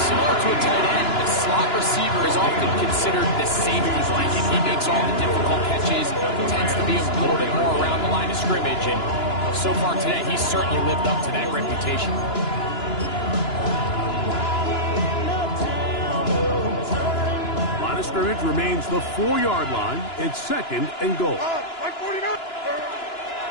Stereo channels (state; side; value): late; right; 2.9 ms